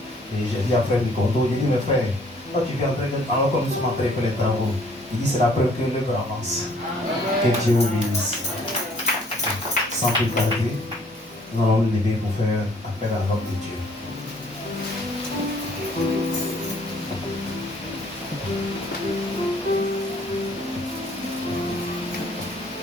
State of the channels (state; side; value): normal; both; correlation 0.61